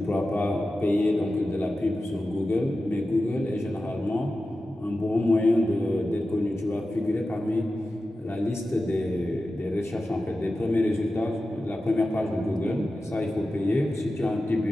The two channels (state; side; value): normal; both; correlation 0.93